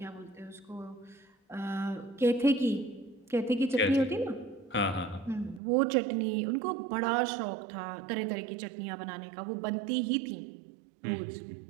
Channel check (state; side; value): drops out; left; at 5.6 s